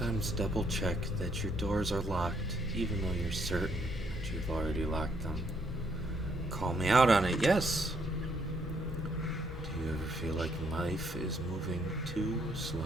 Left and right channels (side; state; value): left; noise; rumble, 16 dB below the sound